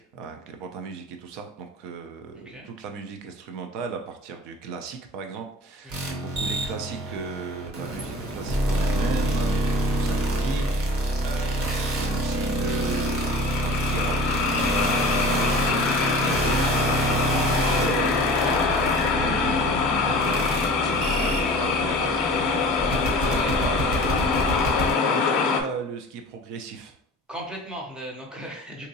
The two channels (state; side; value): normal; both; correlation 0.40